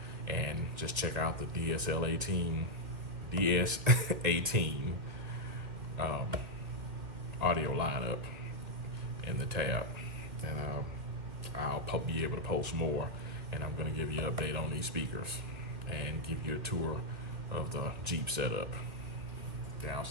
and just check out the Ds18 audio lineup in the tab, and I'll be able to post more, and I'm going to give you an update on these speakers and give you a tour of the Jeep setup. Down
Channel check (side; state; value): left; late; 2.4 ms